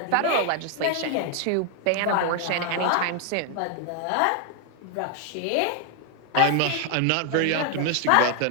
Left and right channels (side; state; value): both; different; correlation 0.00